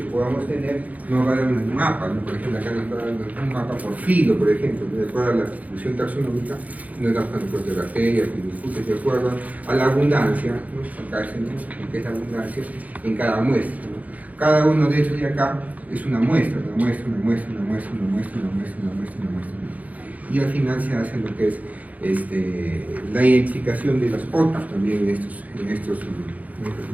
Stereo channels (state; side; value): late; left; 0.074 ms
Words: podamos tener, nos va a dar un mapa, ¿no? Por ejemplo, acá nos está dando un mapa por filo, por ejemplo, de acuerdo a la distribución taxonómica, nos da cuántos de bacterias, de acuerdo a la abundancia, ¿no? Acá es que es la abundancia en cada muestra, ¿no? Cada uno de estos de acá es una muestra, una muestra, una muestra, una muestra, una muestra, una muestra, una muestra, una muestra, ¿no? Y al final se hace lo que es la identificación de los otros también en estos